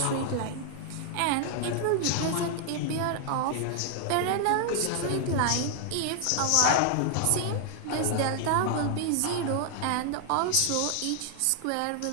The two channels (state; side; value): different; both; correlation 0.00